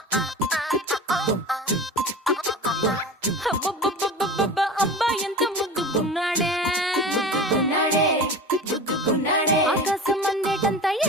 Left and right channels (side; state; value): both; normal; correlation 0.33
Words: అబ్బాయి ఎంత ముద్దుకున్నాడే ఆకాశం అందేటంత